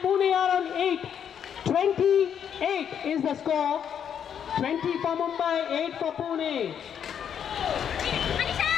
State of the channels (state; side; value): quieter; right; 8.4 dB